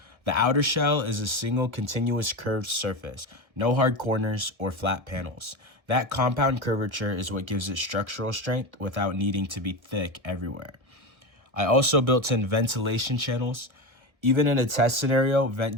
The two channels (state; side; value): late; left; 1.7 ms